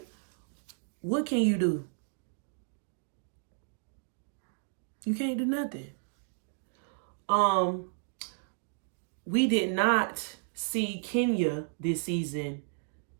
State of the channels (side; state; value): left; silent; digital silence